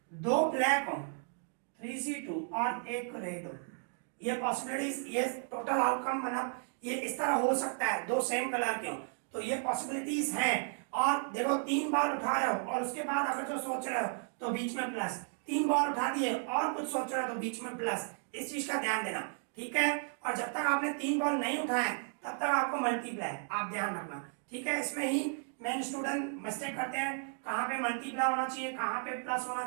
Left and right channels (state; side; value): silent; left; 55 dB below the other